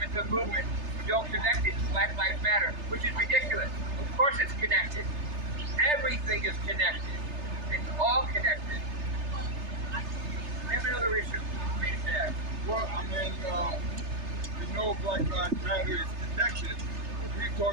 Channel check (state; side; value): late; left; 3.3 ms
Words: movement, who don't connect it to Black Lives Matter, which is ridiculous. Of course it's connected. Everything is connected. It's all connected. We have another issue. well, I mean, we know Black Lives Matter is connected. We